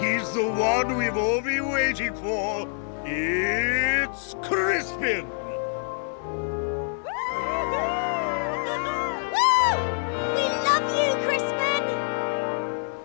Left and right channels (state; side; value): silent; right; digital silence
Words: the one we've all been waiting for. It's Crispin.